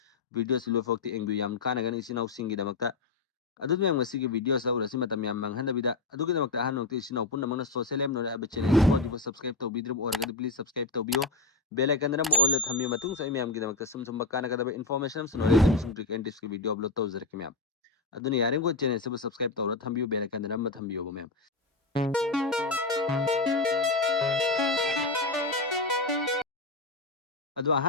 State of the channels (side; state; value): right; quieter; 3.6 dB